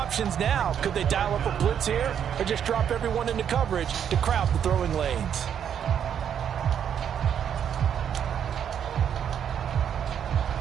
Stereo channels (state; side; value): quieter; left; 8.7 dB